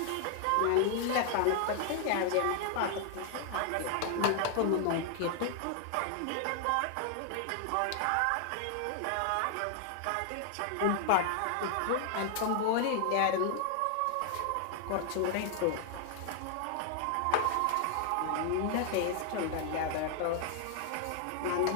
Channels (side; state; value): both; different; correlation 0.00